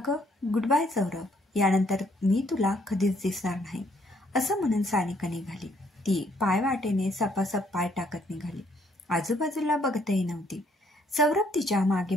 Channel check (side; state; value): both; normal; correlation 0.68